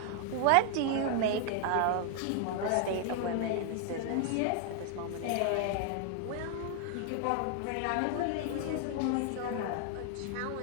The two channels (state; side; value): different; both; correlation 0.00